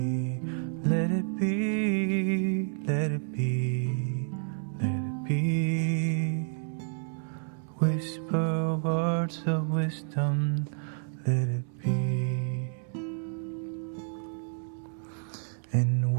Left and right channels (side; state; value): left; silent; 58 dB below the other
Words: let it be, let it be, let it be. Whisper words of wisdom, let it be. And